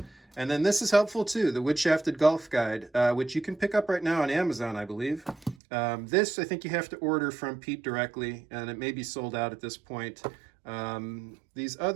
And then this is helpful too, the Wood Shafted Golf Guide, which you can pick up right now on Amazon, I believe. This, I think you have to order from Pete directly, and it may be sold out at this point. These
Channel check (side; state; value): left; drops out; at 5.6 s